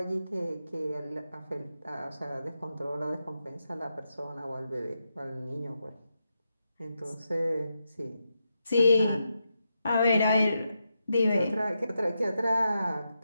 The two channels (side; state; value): both; inverted; correlation -0.86